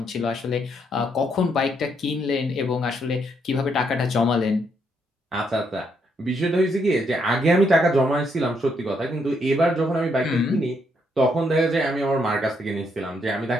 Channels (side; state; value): both; normal; correlation 0.75